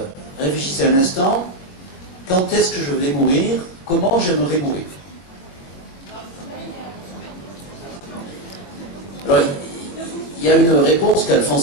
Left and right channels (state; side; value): late; right; 22 ms